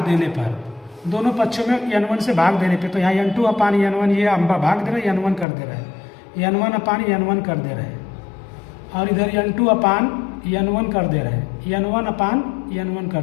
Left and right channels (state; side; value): drops out; right; at 5.5 s